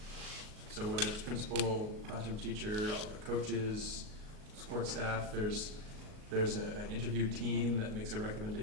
So whether it's principal, classroom teacher, all the coaches, support staff, there's an interview team that makes a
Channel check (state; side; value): late; left; 37 ms